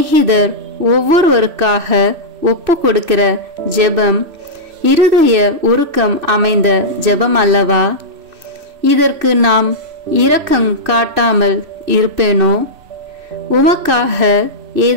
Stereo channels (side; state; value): left; late; 3.1 ms